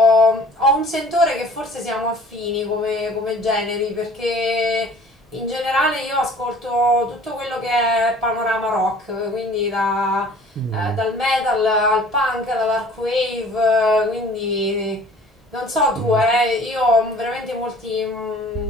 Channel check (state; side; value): normal; both; correlation 0.50